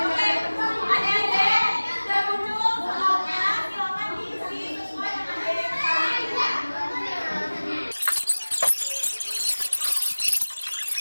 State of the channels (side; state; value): both; inverted; correlation -1.00